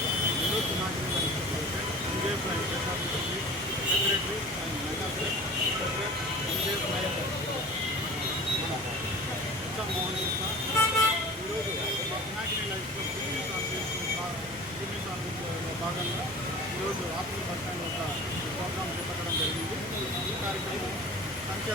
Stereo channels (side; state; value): both; normal; correlation 0.40